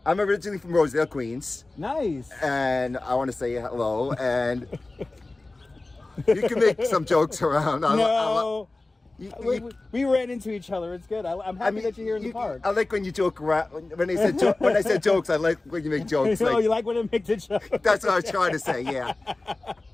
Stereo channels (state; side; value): quieter; right; 3.1 dB